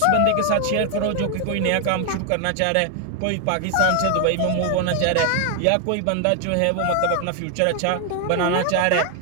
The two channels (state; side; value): different; both; correlation 0.00